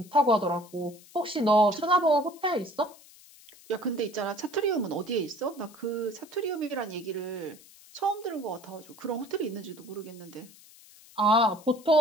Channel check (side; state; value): left; noise; hiss, 23 dB below the sound